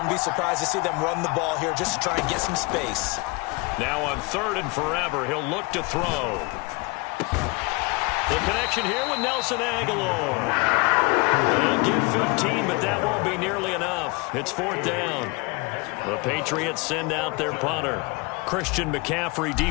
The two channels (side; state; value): right; quieter; 26.4 dB